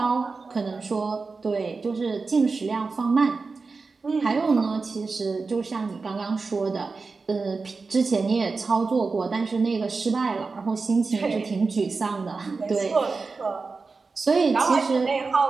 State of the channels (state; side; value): quieter; left; 4.3 dB